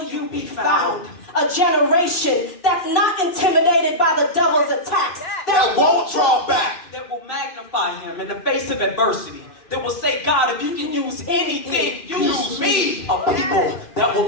you be found? A generation that's not intimidated by the devil's attacks. that won't draw back. That will magnify him in the face of adversity. That will say, God, if you can use anything, use me. A people that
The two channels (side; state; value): right; late; 2.5 ms